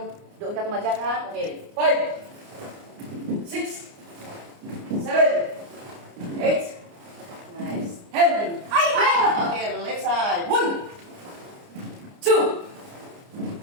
doon ka tumadyak ha. Okay, 5. 6. 7. 8. Nice. 10. Okay, left side. 1. 2.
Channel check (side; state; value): left; late; 29 ms